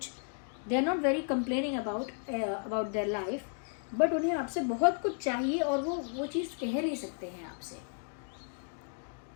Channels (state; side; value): silent; right; 55 dB below the other